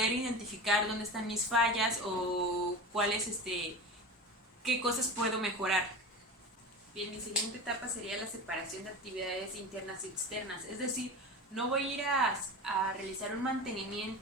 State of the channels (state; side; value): normal; both; correlation 0.30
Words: identificar dónde están mis fallas o qué cosas puedo mejorar. Bien, mi siguiente etapa sería la separación de actividades internas y externas, es decir, no voy a ir a realizar un